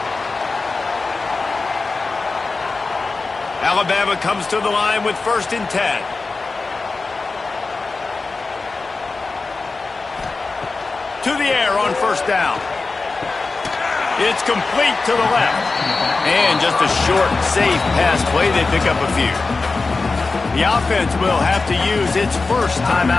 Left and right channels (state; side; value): quieter; right; 3.9 dB